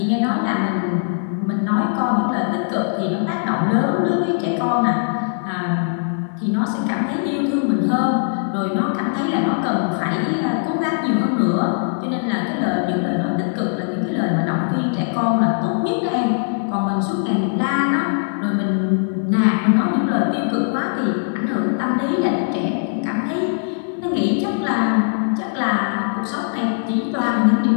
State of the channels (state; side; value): silent; right; digital silence